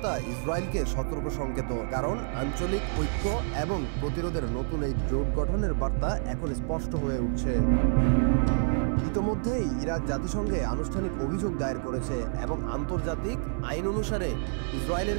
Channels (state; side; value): silent; left; 55 dB below the other